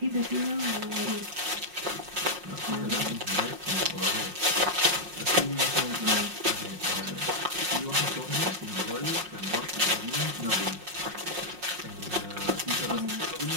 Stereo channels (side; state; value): left; late; 5.5 ms